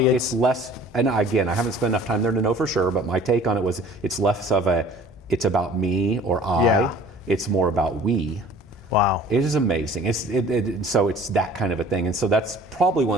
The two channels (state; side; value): normal; both; correlation 0.49